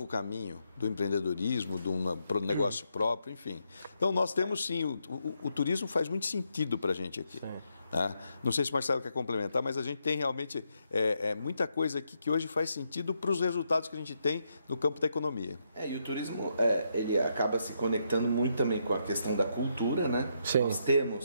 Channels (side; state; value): both; inverted; correlation -0.79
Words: caminho do empreendedorismo, do negócio próprio, enfim. Então, nós temos sim, o turismo faz muito sentido para a gente aqui. Né? Não sei se o Marcelo quer complementar, mas a gente tem realmente muita coisa aqui que hoje faz sentido para os resultados que a gente tem no campo da economia. E o turismo, ele acaba se conectando muito também com a questão da cultura, né? Sim. Nós